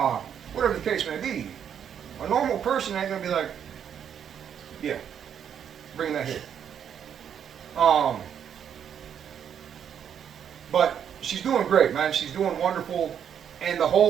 whatever the case may be. A normal person ain't going to be like, yeah, bring that here. But she's doing great, man. She's doing wonderful. And the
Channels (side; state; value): left; quieter; 8.5 dB